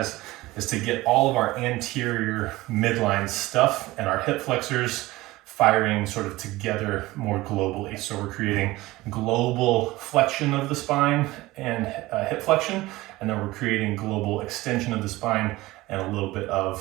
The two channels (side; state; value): left; quieter; 19.0 dB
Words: is to get all of our anterior midline stuff and our hip flexors firing sort of together more globally. So we're creating global flexion of the spine and hip flexion, and then we're creating global extension of the spine and a little bit